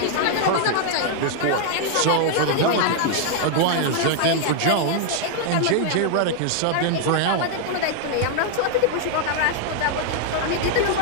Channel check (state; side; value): different; both; correlation 0.00